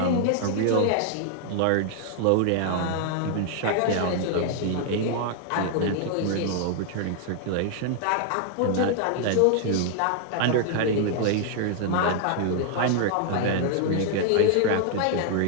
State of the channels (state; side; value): different; both; correlation 0.00